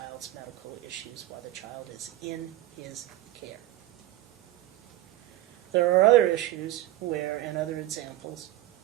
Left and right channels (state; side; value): quieter; left; 15.3 dB